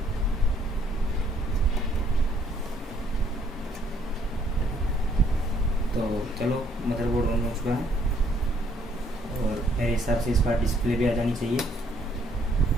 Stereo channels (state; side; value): normal; both; correlation 0.66